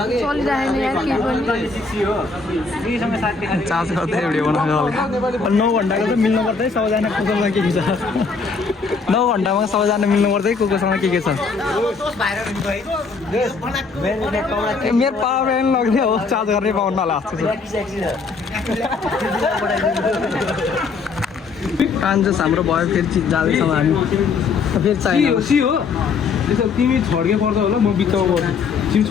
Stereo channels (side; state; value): right; quieter; 4.7 dB